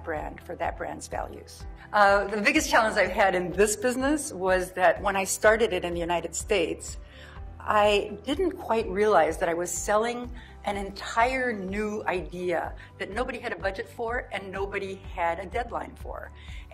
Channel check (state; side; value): identical; both; correlation 1.00